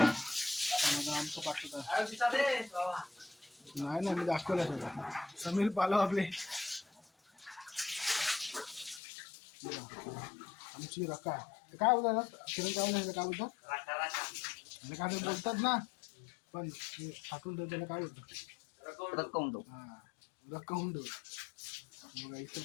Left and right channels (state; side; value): drops out; right; at 9.0 s